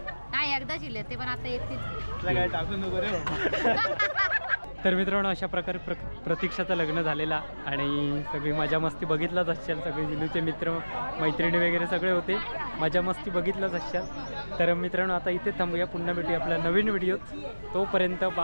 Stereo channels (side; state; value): both; inverted; correlation -1.00